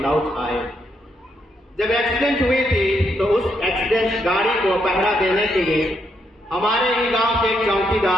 लौट आए। जब एक्सीडेंट हुई थी तो उस एक्सीडेंट गाड़ी को पहरा देने के लिए हमारे ही गांव के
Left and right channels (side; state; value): both; normal; correlation 0.77